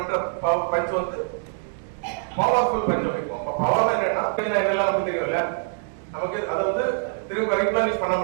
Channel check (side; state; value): left; silent; digital silence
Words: பஞ்ச் வந்து பவர்ஃபுல் பஞ்ச் வைப்போம். அப்ப பவர் என்னன்னா என்னெல்லாம் நமக்கு தெரியும்ல, நமக்கு அதை வந்து திரும்ப ரீப்ளனிஷ் பண்ண